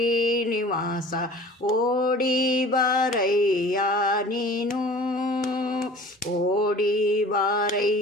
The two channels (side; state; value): both; normal; correlation 0.44